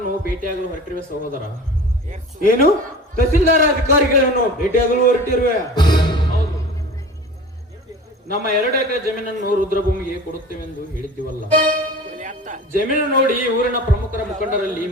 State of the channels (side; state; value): both; normal; correlation 0.38